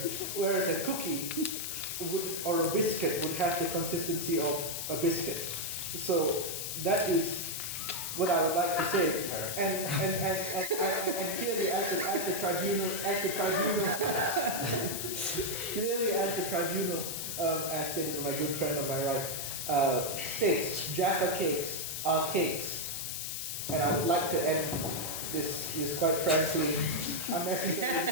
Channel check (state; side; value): noise; left; hiss, 4 dB below the sound